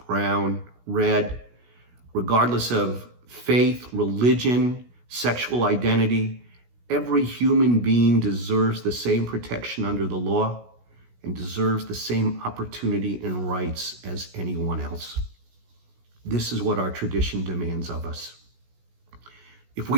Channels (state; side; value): late; left; 16 ms